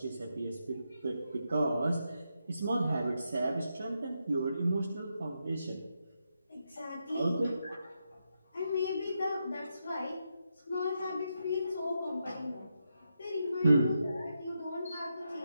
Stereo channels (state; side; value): inverted; both; correlation -0.84